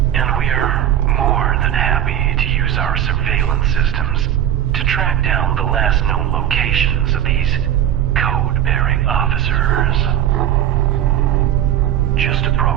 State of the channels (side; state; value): left; quieter; 10.7 dB